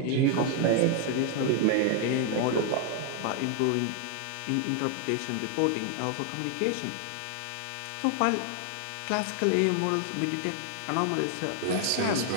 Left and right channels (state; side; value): different; both; correlation 0.00